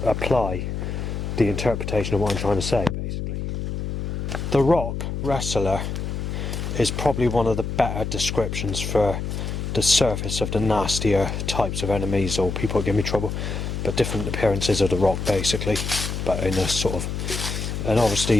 apply the interpretation of what I'm trying to say, basically. The Rock wrestler is probably one of the better descriptions for the surface of the nastier types of enemies or people that give me trouble, but different appearances of The Rock, basically, but in a sort of... And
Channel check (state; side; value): noise; left; hum, 3 dB below the sound